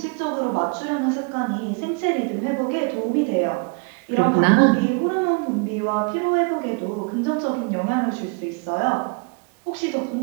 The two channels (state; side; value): quieter; left; 35.3 dB